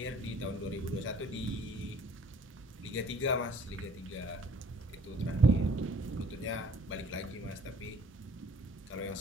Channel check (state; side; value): normal; both; correlation 0.56